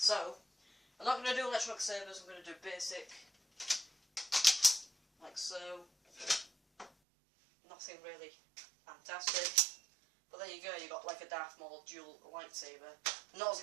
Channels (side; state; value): left; drops out; at 6.9 s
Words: I'm not going to do electronic sabers, I'm going to do basic. Like so. Nothing really fantastic. But there you go, you got like a Darth Maul dual lightsaber. I'm not